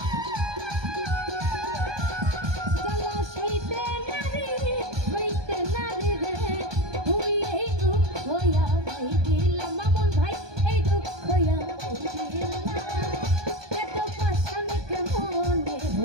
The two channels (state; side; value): late; left; 1.2 ms